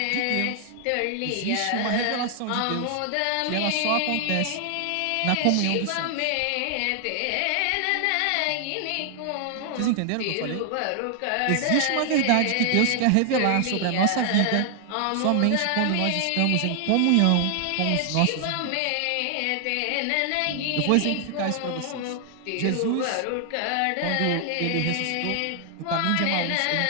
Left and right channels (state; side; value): different; both; correlation 0.00